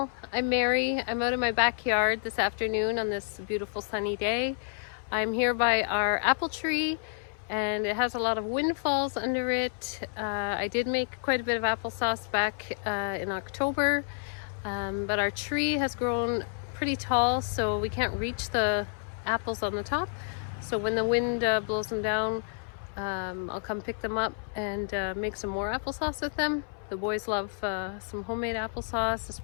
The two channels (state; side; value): silent; right; 58 dB below the other